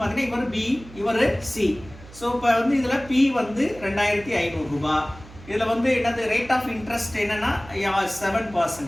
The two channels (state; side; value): noise; right; hum, 19 dB below the sound